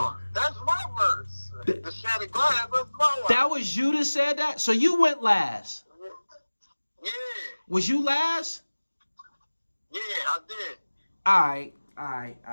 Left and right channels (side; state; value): both; inverted; correlation -1.00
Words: man, that's my verse. The Shattered Glass, that's my one. That was you that said that. So you went last. Yeah. Was you last? Yeah, I did. All right.